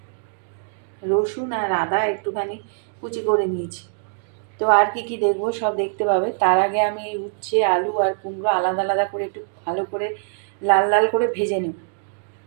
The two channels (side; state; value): left; silent; digital silence